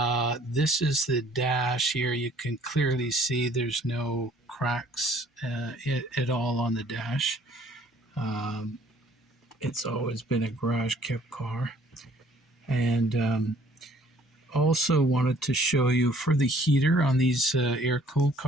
is the dash here. You can clearly see there's no cracks at all on the dash. Um, it's always been a garage kept car. And also wanted to show you for the heater on these air-cooled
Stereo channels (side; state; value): both; normal; correlation 0.58